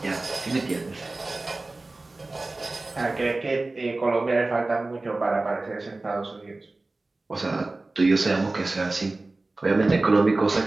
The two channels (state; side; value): quieter; left; 3.1 dB